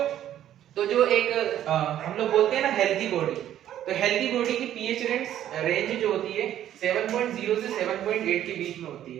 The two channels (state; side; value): quieter; left; 11.5 dB